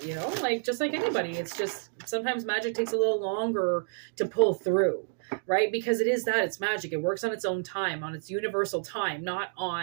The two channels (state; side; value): silent; left; digital silence